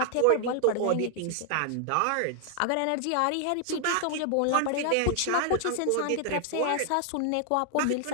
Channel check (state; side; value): different; both; correlation 0.00